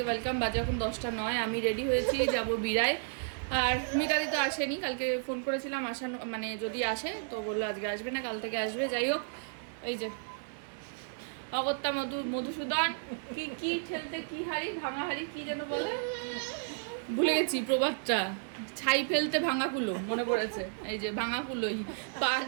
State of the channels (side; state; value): left; silent; digital silence